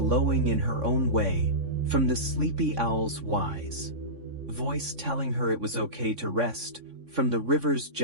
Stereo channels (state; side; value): late; left; 3.6 ms